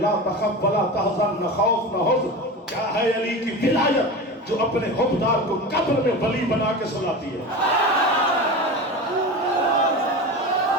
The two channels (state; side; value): normal; both; correlation 0.28